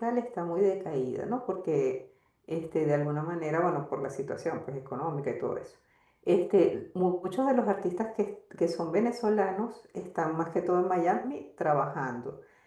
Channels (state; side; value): identical; both; correlation 1.00